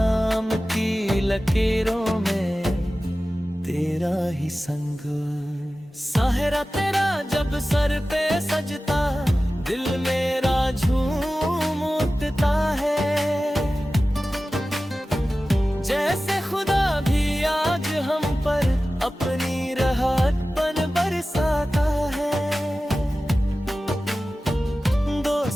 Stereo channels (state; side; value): normal; both; correlation 0.96